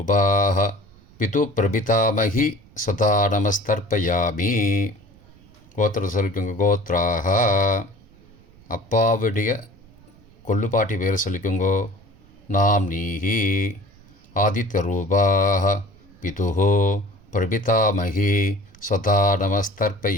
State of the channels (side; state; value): right; noise; rumble, 26 dB below the sound